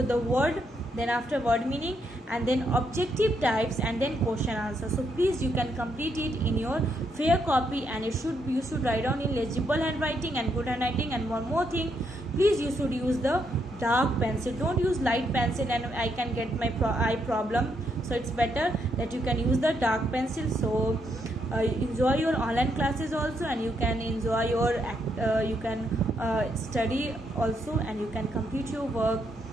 the word, then after word meaning, and then objective types, and then question answer. So please, you can complete it in your fair copy, and you should write down in legible handwriting and good handwriting. And one more thing, please, you should use the dark pencil, don't use light pencil, and I can get my eye problem. So it's better that you can use the dark pencil. So enjoy your online classes also, and you can enjoy your you can study also, and you can complete your work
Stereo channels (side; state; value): both; normal; correlation 0.77